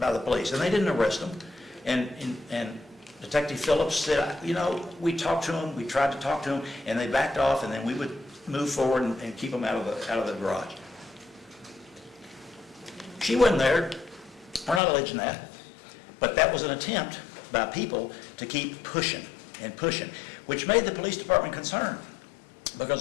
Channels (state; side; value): drops out; right; at 14.8 s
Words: the police, and they didn't arrest them. And Detective Phillips said, you know, we talked to them, we tried to talk to them, and they backed off, and then we would move forward and keep them out of the garage. She wasn't there. We're not alleging that. But that was an attempt by people to keep pushing and pushing, which made the police department concerned. Because